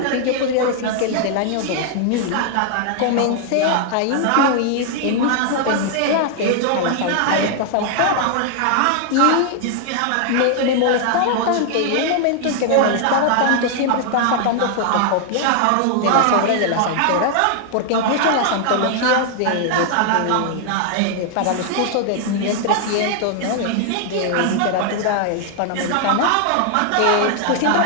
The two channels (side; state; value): both; different; correlation 0.00